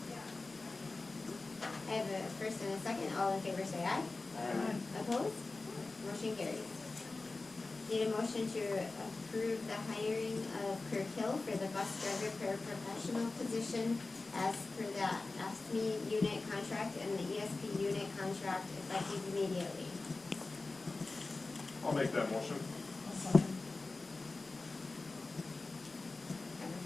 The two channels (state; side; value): quieter; right; 3.5 dB